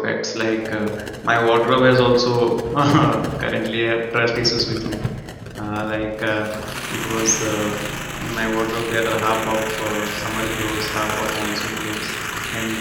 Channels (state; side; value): identical; both; correlation 1.00